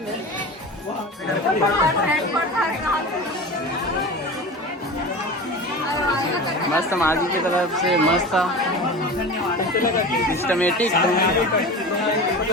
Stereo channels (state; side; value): normal; both; correlation 0.32